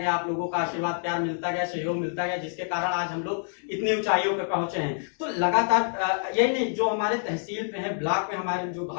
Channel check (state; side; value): silent; right; 60 dB below the other